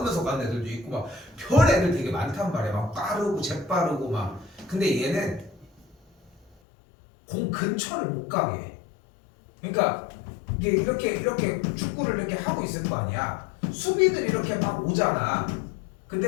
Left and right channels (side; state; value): right; drops out; at 6.6 s